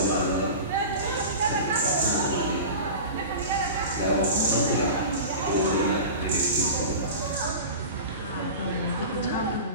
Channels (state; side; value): inverted; both; correlation -0.32